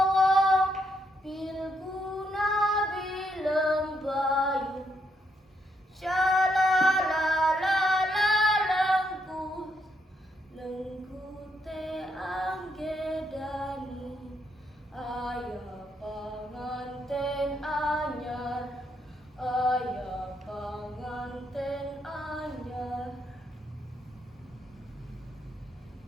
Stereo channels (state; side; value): normal; both; correlation 0.77